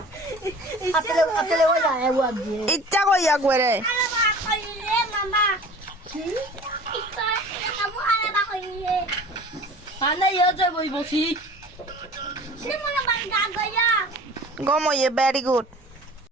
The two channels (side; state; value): both; normal; correlation 0.43